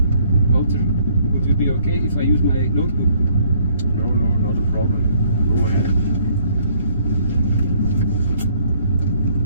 Wouter, would it be okay if I use my notebook? No, not a problem. Go ahead.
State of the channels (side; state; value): both; inverted; correlation -0.62